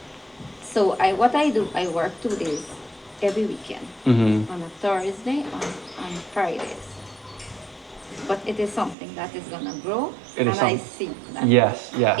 So what I do, I work 2 days every weekend. On a Thursday, on Fridays. But it is something that is gonna grow, I see that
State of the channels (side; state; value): left; drops out; at 9.0 s